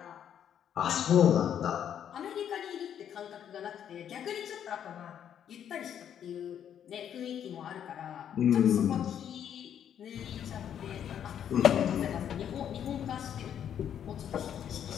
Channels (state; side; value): quieter; right; 9.3 dB